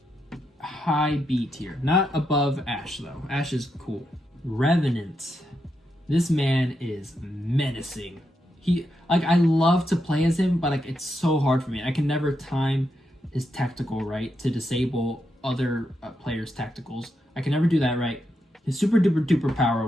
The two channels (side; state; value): both; normal; correlation 0.83